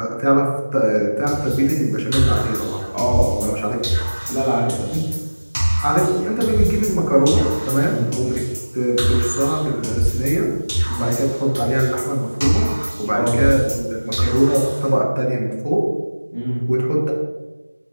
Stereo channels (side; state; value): both; inverted; correlation -1.00